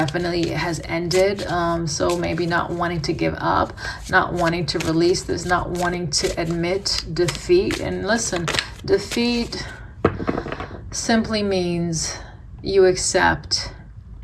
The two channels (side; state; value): both; identical; correlation 1.00